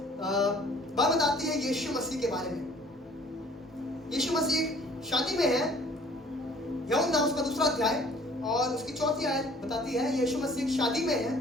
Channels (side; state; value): both; normal; correlation 0.53